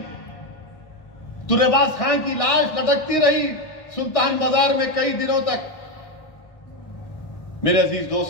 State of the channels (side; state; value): right; late; 1.6 ms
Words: ترے باز خان کی لاش لٹکتی رہی سلطان بازار میں کئی دنوں تک۔ میرے عزیز